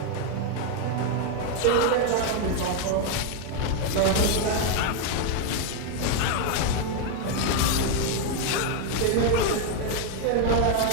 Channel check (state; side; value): different; both; correlation 0.01